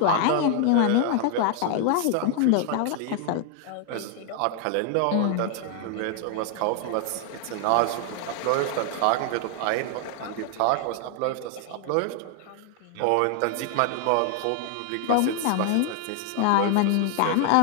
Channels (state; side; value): different; both; correlation 0.00